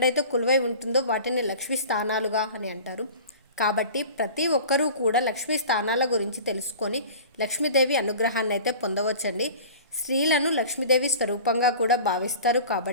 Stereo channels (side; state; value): both; inverted; correlation -0.41